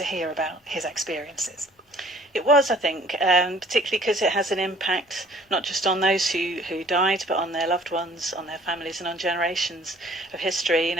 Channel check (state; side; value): normal; both; correlation 0.55